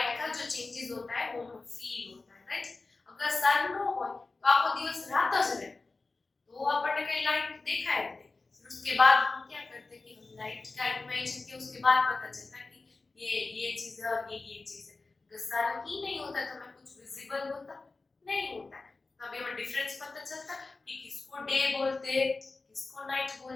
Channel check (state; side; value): quieter; right; 3.7 dB